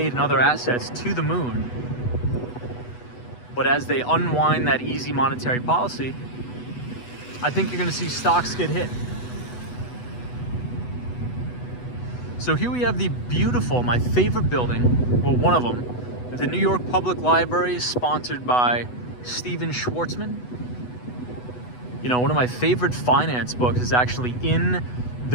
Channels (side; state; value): right; late; 8.1 ms